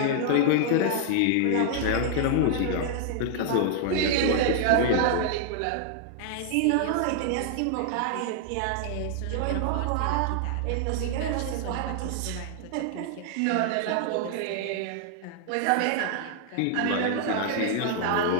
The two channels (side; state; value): both; different; correlation 0.00